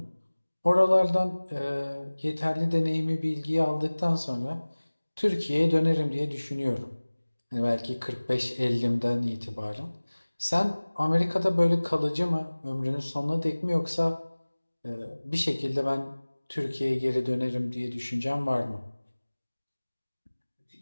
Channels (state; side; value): inverted; both; correlation -1.00